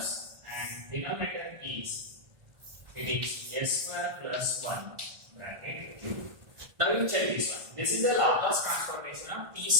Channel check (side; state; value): left; late; 1.5 ms